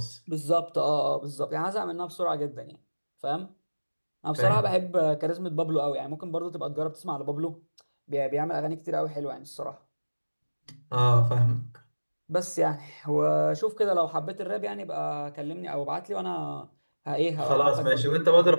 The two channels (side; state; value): both; inverted; correlation -1.00